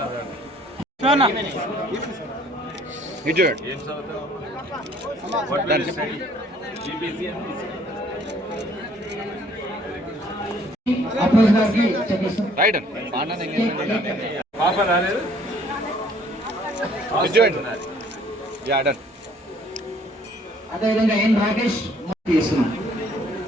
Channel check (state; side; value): normal; both; correlation 0.59